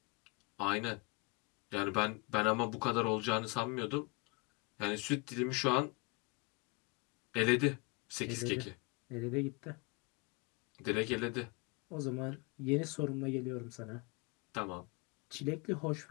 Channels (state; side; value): quieter; right; 29.2 dB